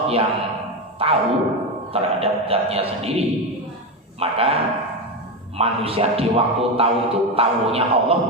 yang tahu terhadap zatnya sendiri, maka manusia di waktu tahu itu tahunya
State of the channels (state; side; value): normal; both; correlation 0.14